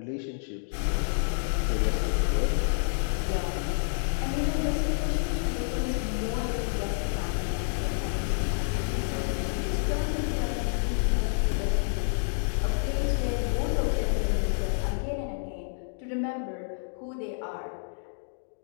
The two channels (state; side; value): silent; right; digital silence